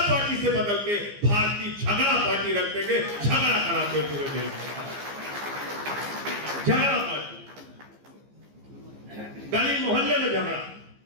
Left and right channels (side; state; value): left; late; 15 ms